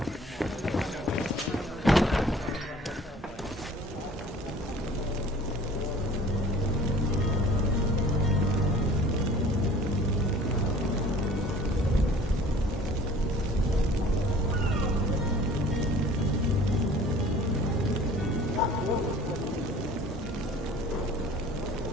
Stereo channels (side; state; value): both; normal; correlation 0.48